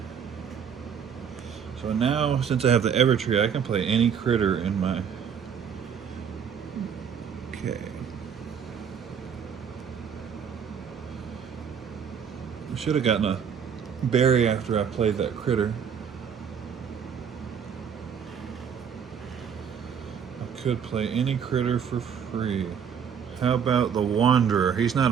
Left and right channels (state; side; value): quieter; left; 7.6 dB